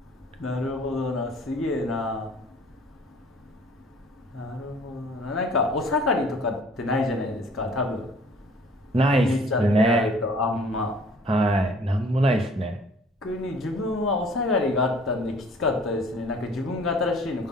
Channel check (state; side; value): normal; both; correlation 0.53